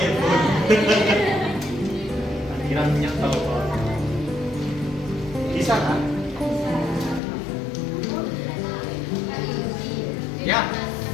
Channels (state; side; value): drops out; right; at 7.2 s